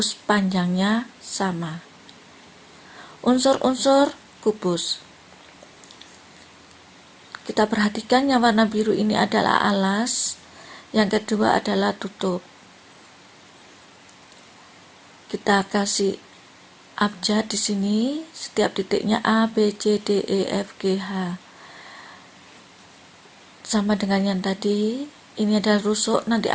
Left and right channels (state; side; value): identical; both; correlation 1.00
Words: panjangnya sama. Unsur-unsur kubus. Kita perhatikan yang warna biru ini adalah alas, yang kedua adalah tutup. Kita kasih abjad di sini, setiap titiknya A, B, C, D, E, F, G, H. Sama dengan yang tadi, ini adalah rusuk, nanti